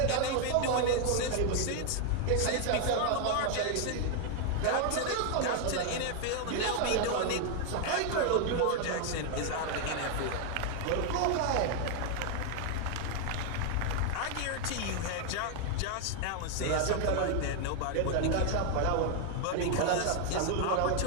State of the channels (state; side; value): different; both; correlation 0.00